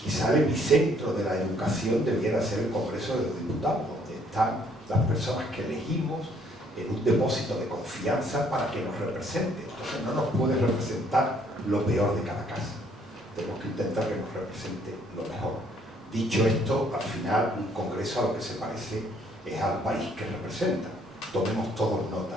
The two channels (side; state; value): both; normal; correlation 0.65